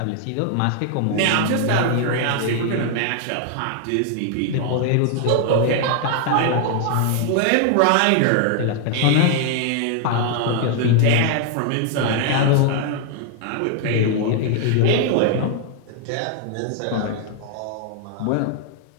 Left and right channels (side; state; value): both; different; correlation 0.00